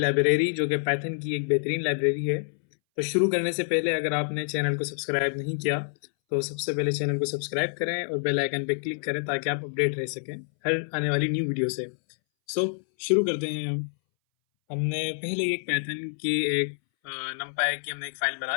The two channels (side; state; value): right; silent; 60 dB below the other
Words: जो कि पाइथन की एक बेहतरीन लाइब्रेरी है। तो शुरू करने से पहले अगर आपने चैनल को सब्सक्राइब नहीं किया तो सबसे पहले चैनल को सब्सक्राइब करें और बेल आइकन पर क्लिक करें ताकि आप अपडेट रह सकें हर आने वाली न्यू वीडियो से। सो शुरू करते हैं हम। हमने पहले एक पाइथन की एक नमपाई की हमने एक फ़ाइल बना